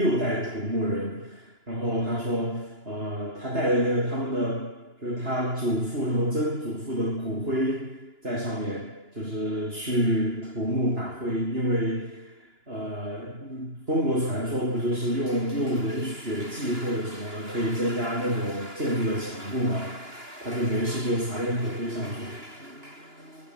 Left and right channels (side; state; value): left; late; 2.9 ms